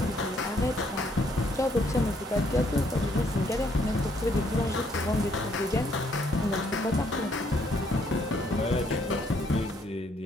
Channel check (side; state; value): both; normal; correlation 0.69